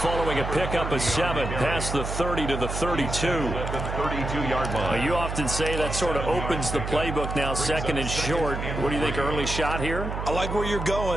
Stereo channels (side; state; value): right; noise; hum, 5 dB below the sound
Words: a pickup of 7 past the 30 to the 32. At the 32-yard line. You often say that sort of opens the playbook now, second and short. What do you think, early shot here? I like where you're